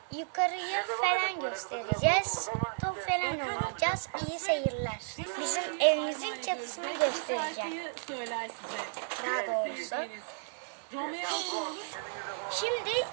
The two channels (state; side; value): silent; left; digital silence